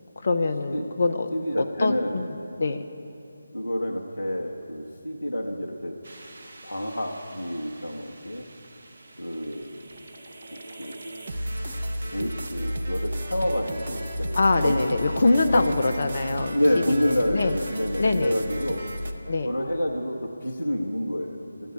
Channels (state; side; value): inverted; both; correlation -0.95